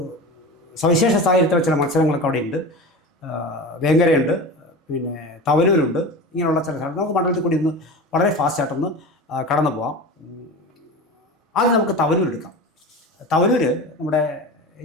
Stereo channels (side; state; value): both; normal; correlation 0.30